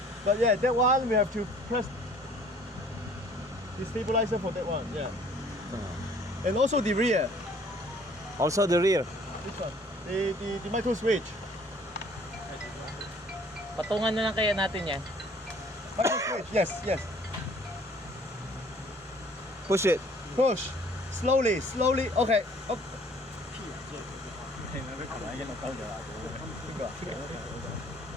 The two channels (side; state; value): both; normal; correlation 0.56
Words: But yeah, that one we have to press the stabilizer for that one. Yeah. And also the rear. Also the rear. Which one? The micro switch. Patungan na lang kaya natin yan. Micro switch. Yes, yes. Push it. Push. Slowly, slowly. Okay. Okay.